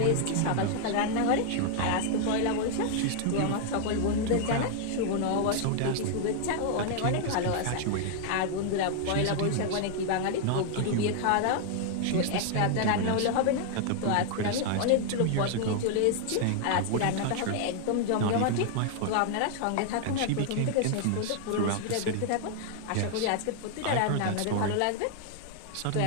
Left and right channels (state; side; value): different; both; correlation 0.00